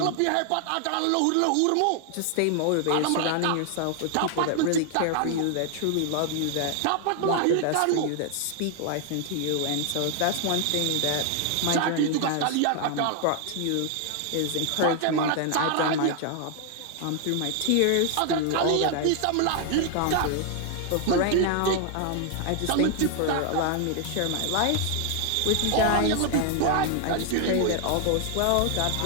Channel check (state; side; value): different; both; correlation 0.00